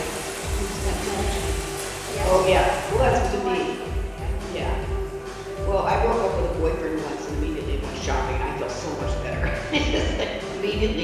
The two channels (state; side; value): identical; both; correlation 1.00